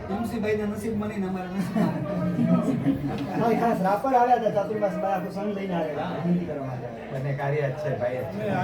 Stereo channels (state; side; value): identical; both; correlation 1.00